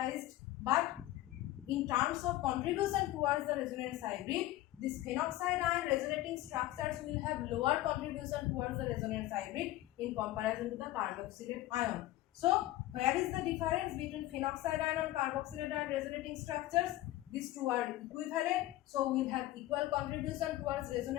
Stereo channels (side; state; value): right; quieter; 16.0 dB